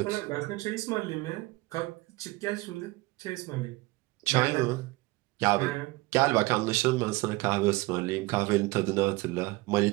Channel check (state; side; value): quieter; left; 21.4 dB